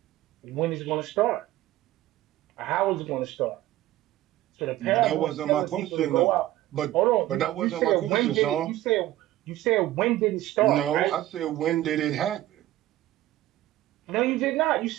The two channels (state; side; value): quieter; left; 15.1 dB